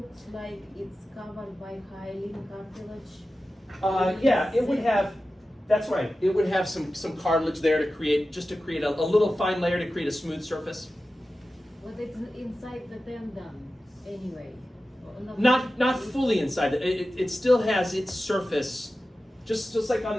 like it's covered by hyaline cartilage. Yeah, it would have. That's right. It would have some cartilage there to create a little fine layer to create a smooth surface. But it's inside the tendon anyway. Or Not fully inside. It still has its surface, just like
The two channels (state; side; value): normal; both; correlation 0.94